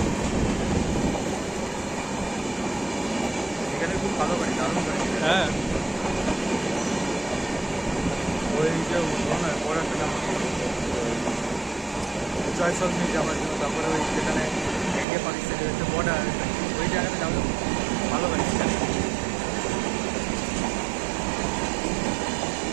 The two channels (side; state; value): left; drops out; at 15.1 s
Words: এখানে খুব ভালো বাড়ি, দারুণ বাড়ি। হ্যাঁ ওই যে বড় একটা জয়সল মিল যাওয়ার জন্য, তারপরে ওই যেখানে ইন্ডিয়া পাকিস্তানের হচ্ছে বর্ডার, ওই জায়গাটা যাবো। ভালো বাড়ি সেখানে।